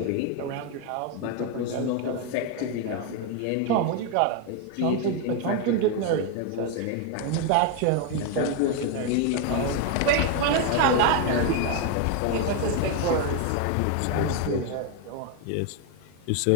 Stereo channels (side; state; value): both; different; correlation 0.01